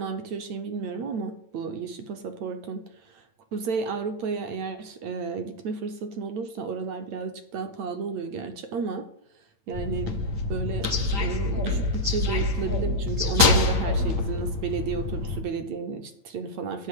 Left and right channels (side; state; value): left; late; 8.9 ms